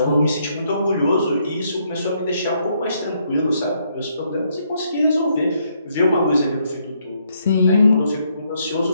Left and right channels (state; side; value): inverted; both; correlation -0.73